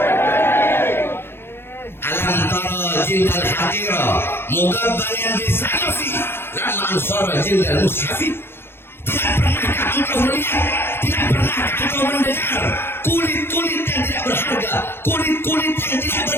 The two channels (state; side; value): late; right; 0.11 ms